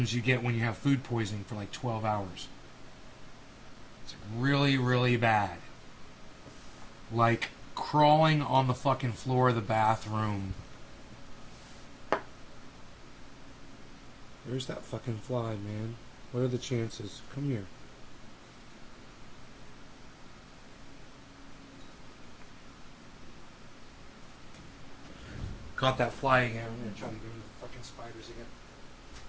you get when you have food poisoning for, like, 12 hours. It's really, really bad. Like, crawling on the fucking floor of the bathroom. Where's that fucking fly, man? What are the chances? Come here. Caught that fly again. I'm going to try to get rid of the fucking spiders again.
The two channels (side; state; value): both; identical; correlation 1.00